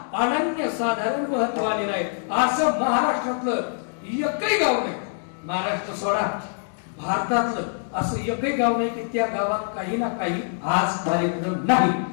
अनन्य साधारण महत्व आलेलं आहे. असं महाराष्ट्रातलं एकही गाव नाही. महाराष्ट्र सोडा भारतातलं असं एकही गाव नाही की त्या गावात काही ना काही आज कार्यक्रम नाही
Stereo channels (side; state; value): right; silent; digital silence